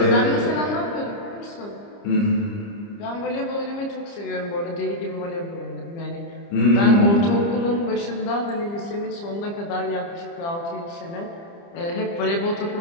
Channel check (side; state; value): right; late; 30 ms